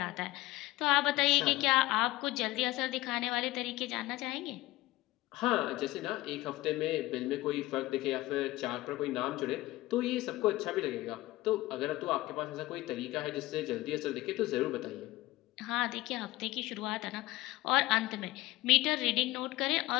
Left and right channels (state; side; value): quieter; right; 18.3 dB